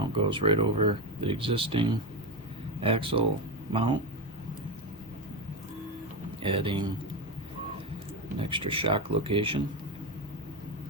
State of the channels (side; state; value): both; normal; correlation 0.13